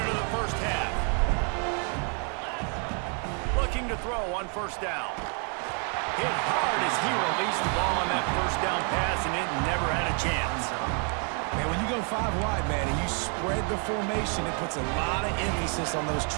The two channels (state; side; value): quieter; left; 39.9 dB